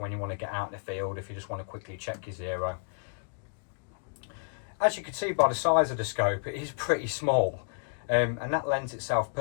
when you want to get out in the field, if you just want to quickly check your zero. As you can see by the size of the scope, it is pretty small, and that lends itself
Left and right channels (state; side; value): silent; right; digital silence